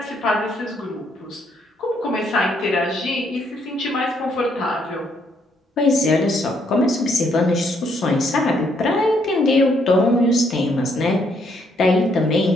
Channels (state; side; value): normal; both; correlation 0.71